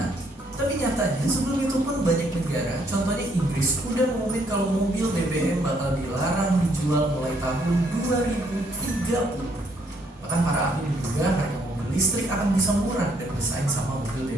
Tapi nyatanya sebelum itu pun banyak negara, contohnya Inggris, udah mengumumkan kalau mobil BBM bakal dilarang dijual mulai tahun 2030. Bahkan para ahli menduga harga mobil listrik akan bisa murah dan bersaing sama mobil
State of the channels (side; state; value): both; normal; correlation 0.69